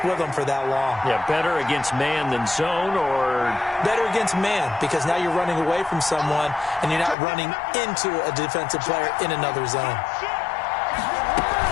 with them for that long. Yeah, better against man than zone, or? Better against man, because now you're running away from someone and you're not running into a defensive player in another zone.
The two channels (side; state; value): right; drops out; at 7.2 s